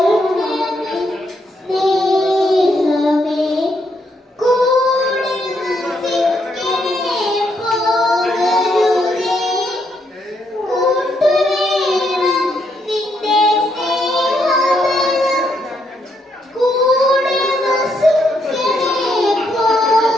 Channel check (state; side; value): normal; both; correlation 0.76